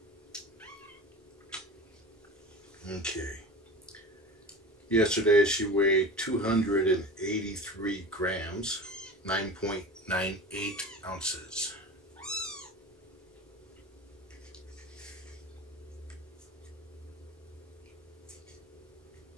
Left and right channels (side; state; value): both; normal; correlation 0.34